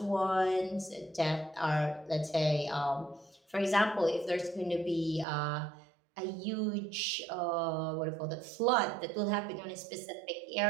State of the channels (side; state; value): left; drops out; at 5.2 s